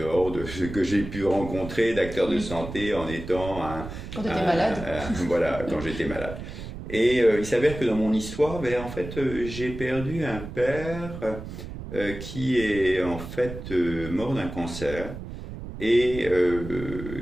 de ce que j'ai pu rencontrer d'acteurs de santé en étant quand tu étais malade. Voilà, quand j'étais malade. Et il s'avère que dans mon histoire, en fait, j'ai perdu un père qui est en fait mort d'un cancer et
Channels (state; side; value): noise; right; rumble, 10 dB below the sound